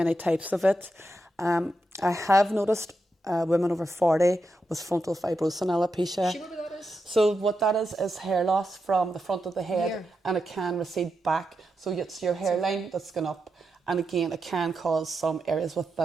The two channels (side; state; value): both; normal; correlation 0.86